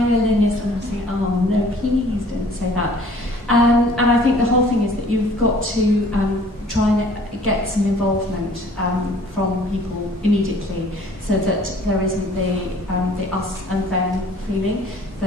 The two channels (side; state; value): both; normal; correlation 0.53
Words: And I'm saying, oh no, please don't say that. And I think the whole thing is that you've got to try and get some involvement from people immediately, so that there isn't the us and them feeling,